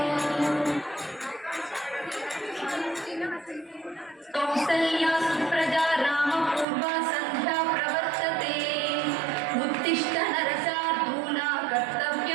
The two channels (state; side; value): drops out; left; at 6.7 s